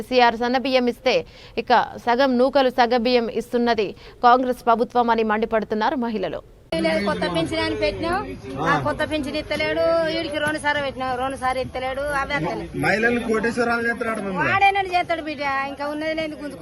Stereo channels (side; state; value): both; identical; correlation 1.00